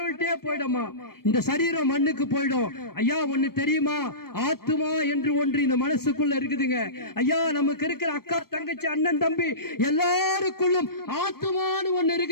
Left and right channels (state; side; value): late; right; 0.94 ms